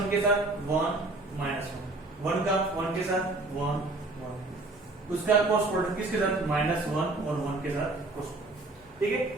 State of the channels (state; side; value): quieter; left; 3.0 dB